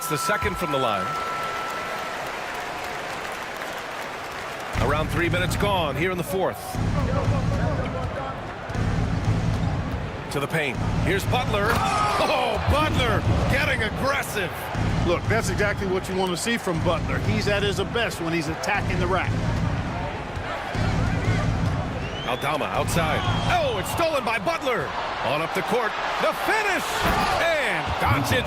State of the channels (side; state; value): both; identical; correlation 1.00